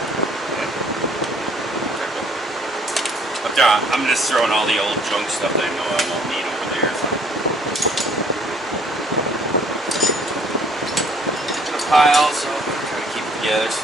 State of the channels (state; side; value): normal; both; correlation 0.60